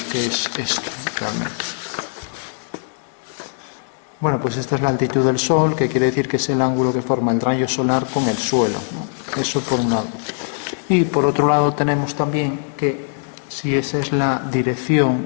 que es esto realmente. Bueno, pues esta es la altitud del Sol, que quiere decir que es el ángulo que forma el rayo solar con el suelo, ¿no? Eso por un lado. Y por otro lado tenemos también que si esa es la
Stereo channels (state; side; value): silent; right; 65 dB below the other